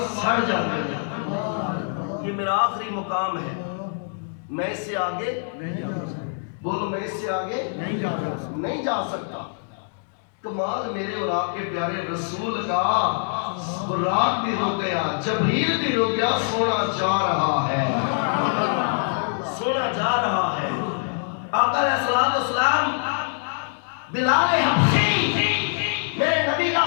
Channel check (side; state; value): right; silent; digital silence